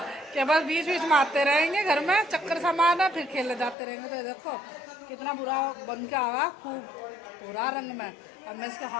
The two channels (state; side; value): drops out; right; at 3.8 s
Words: कि बस बीच बीच में आते रहेंगे, घर में चक्कर सामान है, फिर खेलने जाते रहेंगे। तो देखो कितना बुरा बन के आया, खूब पूरा रंग में। अब मैं इसके